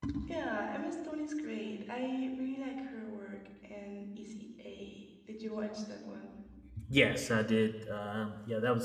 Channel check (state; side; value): identical; both; correlation 1.00